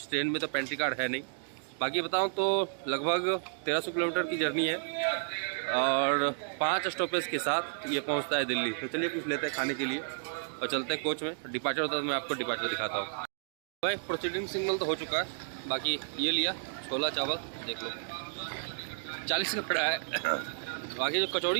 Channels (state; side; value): silent; left; digital silence